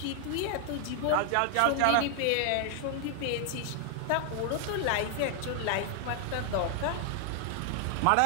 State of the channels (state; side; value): different; both; correlation 0.00